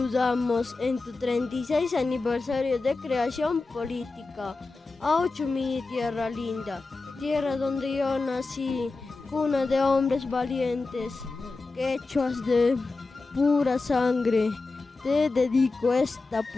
en tu 36 aniversario de creación política. ¡Oh Chumilli Tierra Linda! Tierra donde yo nací, cuna de hombres valientes, quechuas de pura sangre. Te dedico esta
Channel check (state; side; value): quieter; right; 3.7 dB